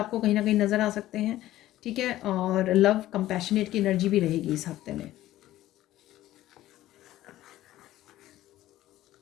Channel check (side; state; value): right; quieter; 14.7 dB